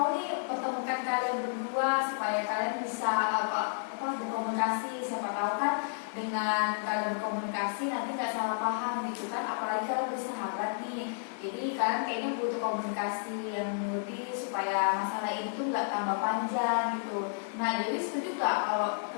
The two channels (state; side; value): silent; right; digital silence